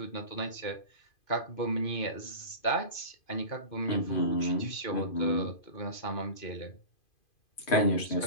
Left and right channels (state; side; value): late; right; 2.5 ms